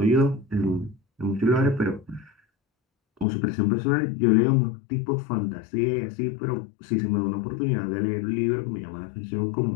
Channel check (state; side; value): drops out; right; at 3.2 s